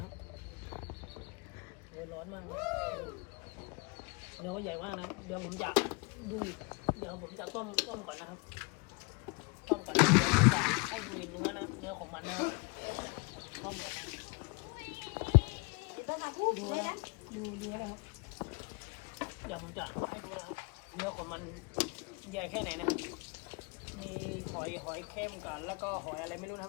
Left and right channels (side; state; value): right; quieter; 30.5 dB